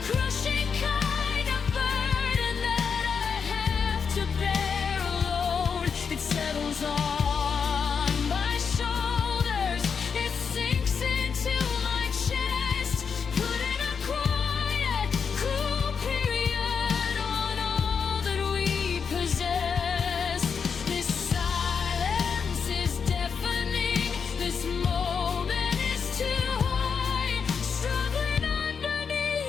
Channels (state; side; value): quieter; right; 6.2 dB